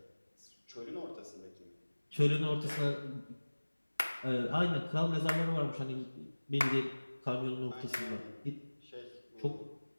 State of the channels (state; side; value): inverted; both; correlation -1.00